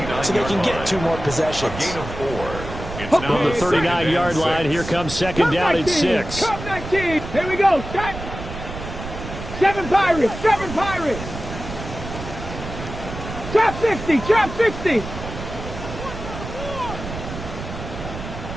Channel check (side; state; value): right; noise; rumble, 9 dB below the sound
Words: so they can get 2 more possessions. From the 39-yard line, here comes second down and 6. Cup 19. Here we go. Start. 7 Pirates. 7 Pirates. Trap 60. Trap 60.